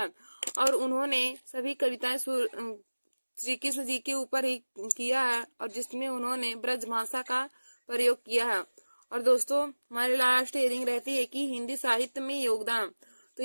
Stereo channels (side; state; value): both; inverted; correlation -1.00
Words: और उन्होंने सभी कविताएं श्री कृष्ण जी के ऊपर ही किया है और जिसमें उन्होंने ब्रज भाषा का प्रयोग किया है। और दोस्तों, हमारी लास्ट हेडिंग रहती है कि हिंदी साहित्य में योगदान। तो